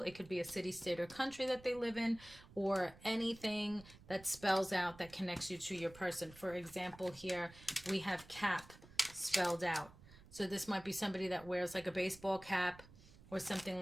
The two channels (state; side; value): noise; right; rumble, 21 dB below the sound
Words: It could be a city, state, or country that they live in, or anything that spells out that connects you to your person. For example, here we have cap spelled out. So this might be somebody that wears like a baseball cap or something